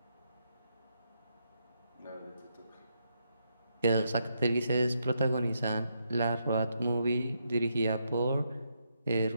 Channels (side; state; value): both; inverted; correlation -0.80